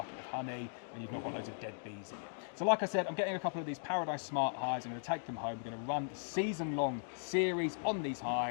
of honey, and you've not got loads of dead bees in it. So like I said, I'm getting a couple of these Paradise Smart hives. I'm going to take them home. We're going to run the season-long series on these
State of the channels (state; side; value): silent; right; digital silence